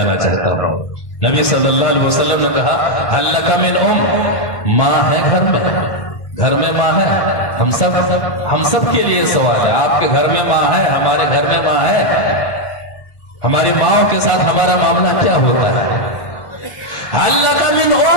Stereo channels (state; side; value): late; right; 1.7 ms